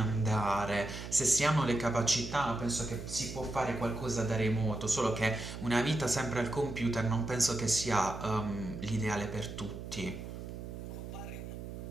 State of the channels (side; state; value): right; noise; hum, 9 dB below the sound